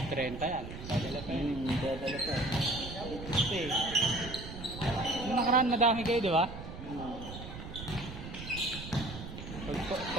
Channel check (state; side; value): noise; right; rumble, 11 dB below the sound